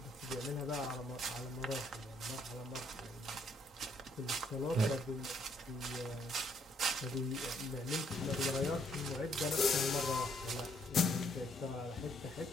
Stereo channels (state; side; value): normal; both; correlation 0.69